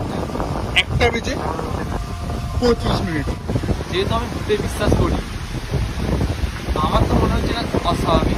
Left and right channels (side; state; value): both; identical; correlation 1.00